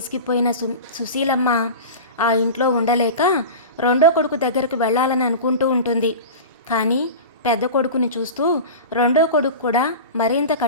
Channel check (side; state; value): both; inverted; correlation -0.30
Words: సుశీలమ్మ ఆ ఇంట్లో ఉండలేక రెండో కొడుకు దగ్గరకు వెళ్ళాలని అనుకుంటూ ఉంటుంది. కానీ పెద్ద కొడుకుని చూస్తూ రెండో కొడుకు కూడా మరింత